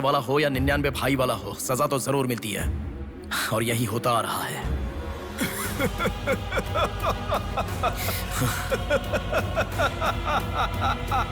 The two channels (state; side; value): identical; both; correlation 1.00